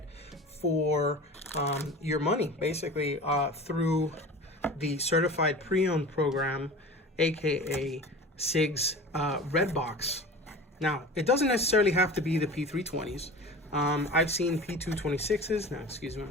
for your money, basically through the certified pre-owned program, aka Sigs Red Box. Now, it doesn't necessarily have to be the P320s. I've seen P226s. Now, excuse me, I'm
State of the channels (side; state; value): both; normal; correlation 0.36